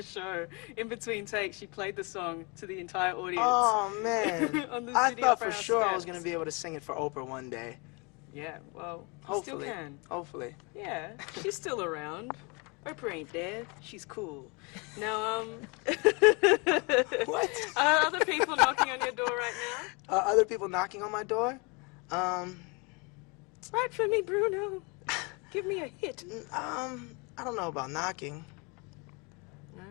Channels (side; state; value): right; quieter; 30.4 dB